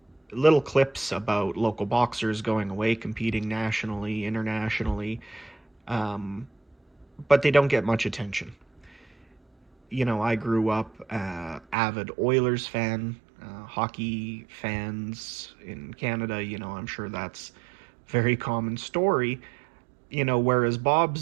Little clips about local boxers going away, competing nationally, internationally, but they don't get much attention. You know, I grew up avid Oilers fan, hockey fans in Canada. You know, I'm sure that's a very common story. You know, whereas Bob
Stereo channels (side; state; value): left; drops out; at 11.8 s